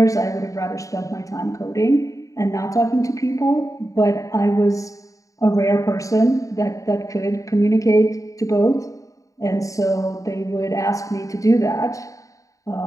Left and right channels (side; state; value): right; late; 0.16 ms